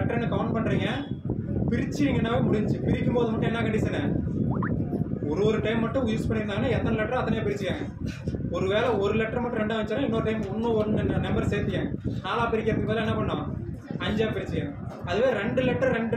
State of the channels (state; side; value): identical; both; correlation 1.00